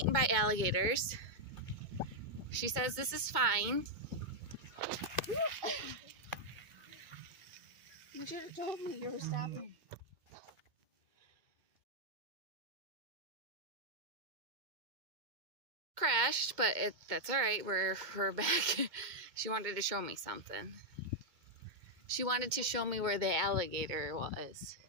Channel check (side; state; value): left; late; 2.1 ms